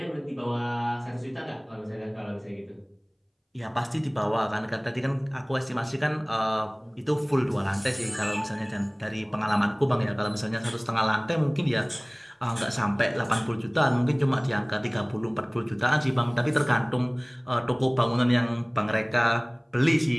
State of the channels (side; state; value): both; identical; correlation 1.00